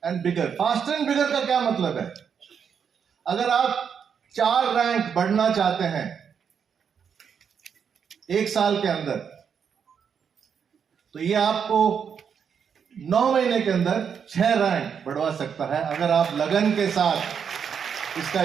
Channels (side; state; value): left; quieter; 7.2 dB